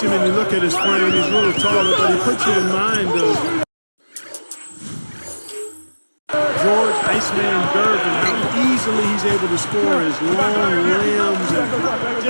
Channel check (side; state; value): both; inverted; correlation -1.00